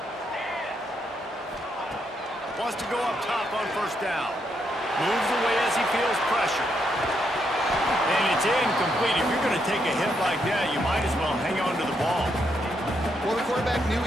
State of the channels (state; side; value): normal; both; correlation 0.78